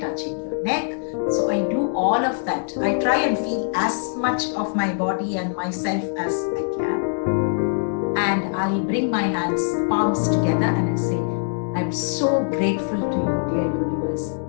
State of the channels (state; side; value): silent; right; digital silence